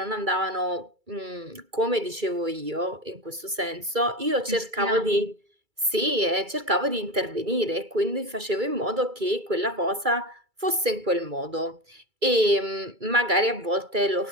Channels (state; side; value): late; left; 2.3 ms